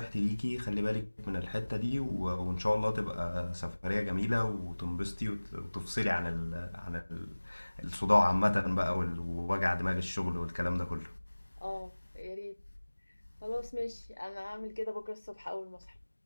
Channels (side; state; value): both; inverted; correlation -1.00